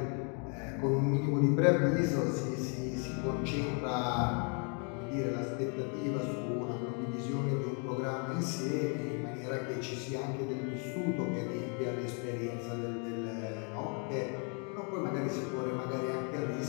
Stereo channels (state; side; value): quieter; right; 38.4 dB